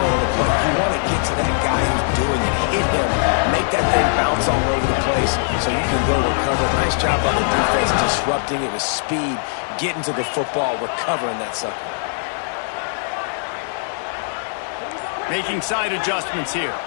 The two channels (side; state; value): right; silent; digital silence